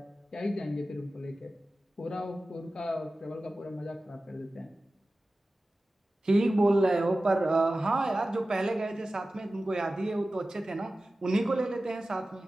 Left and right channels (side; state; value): both; normal; correlation 0.95